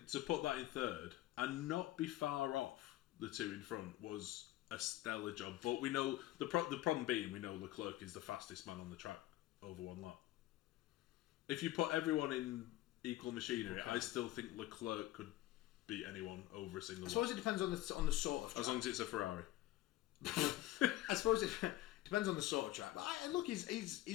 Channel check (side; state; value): right; quieter; 15.5 dB